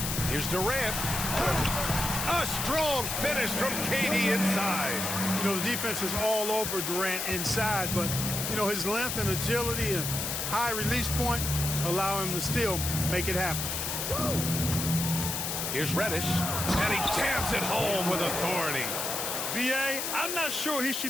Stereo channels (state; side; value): noise; left; hiss, 2 dB below the sound